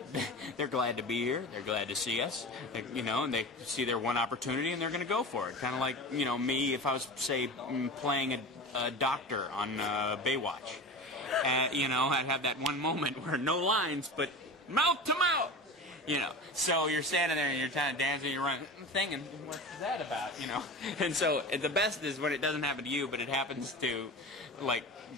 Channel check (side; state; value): both; normal; correlation 0.31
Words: they're glad to be here. They're glad to see us, and they see their one opportunity, and they're going to go for it. Kind of like, me if I was, say, playing a doctor on Baywatch. I'd have that one moment where no lines, but mouth to mouth. So you're standing there and you're kind of dancing, you're running, thinking, what's that about, And so the best is when it doesn't happen to you, but it happens to, like,